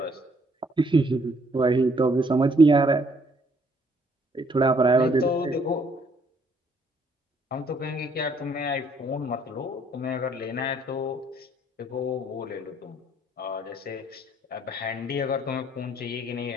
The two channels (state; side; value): normal; both; correlation 0.66